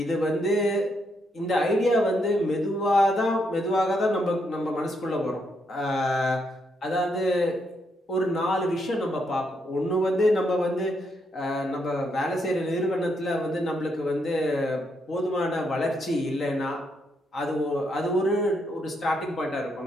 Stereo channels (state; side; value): normal; both; correlation 0.77